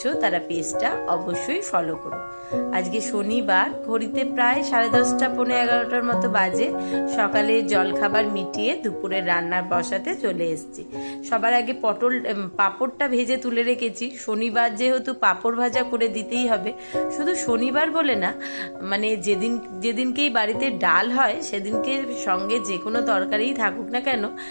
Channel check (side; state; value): both; inverted; correlation -1.00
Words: তারা পেজটা অবশ্যই ফলো করো। আজকে শনিবার, ঘড়িতে প্রায় 10:30 পৌনে 11টার মতো বাজে। সকালে জলখাবার মিটিয়ে দুপুরে রান্নার বসাতে চলে এসেছি। সবার আগে পাঁপড়টা ভেজে তুলে রেখেছি। শনিবার যেহেতু পাঁপড় ভাজা করে দিতেই হবে। শুধু শনিবার বলে না, মানে যেদিনকেই বাড়িতে ডাল হয় সেদিনকে সঙ্গে যে কোনো তরকারিই থাকুক না কেন,